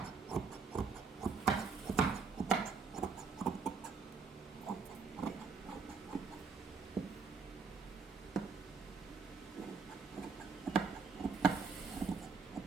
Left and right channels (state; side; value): quieter; left; 5.0 dB